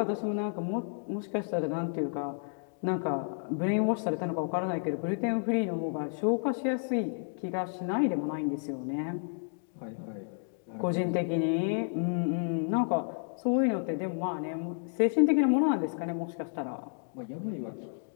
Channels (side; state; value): right; silent; digital silence